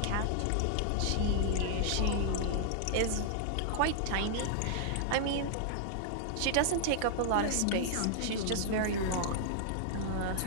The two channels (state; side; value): different; both; correlation -0.01